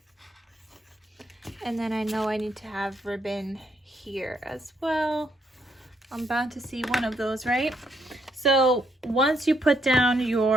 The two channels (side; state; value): both; normal; correlation 0.74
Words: and then I know I need to have ribbon here as well. I'm bound to see one of those, right? So once you put down